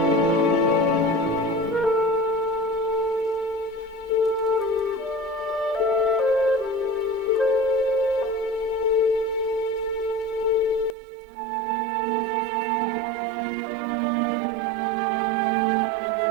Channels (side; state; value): left; drops out; at 11.0 s